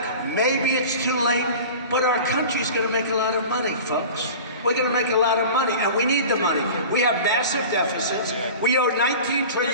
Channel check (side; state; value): both; inverted; correlation -0.37